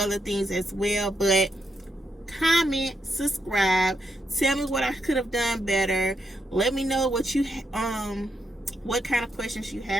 things as well. But comment, subscribe, tell me what I could have done better, let me know what you what kind of questions you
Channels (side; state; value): both; normal; correlation 0.81